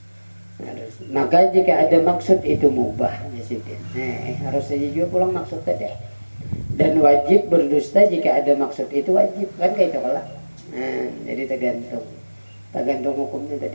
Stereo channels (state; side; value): inverted; both; correlation -1.00